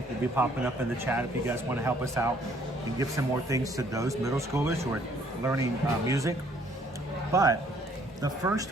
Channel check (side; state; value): both; normal; correlation 0.62